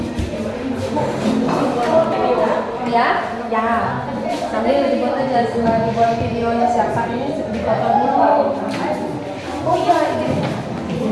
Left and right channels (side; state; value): both; identical; correlation 1.00